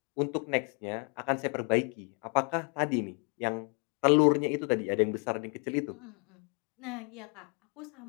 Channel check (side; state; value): right; quieter; 38.3 dB